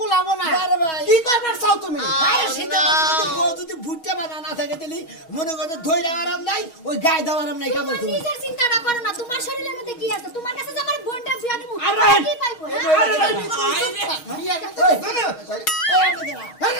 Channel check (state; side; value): late; right; 6.2 ms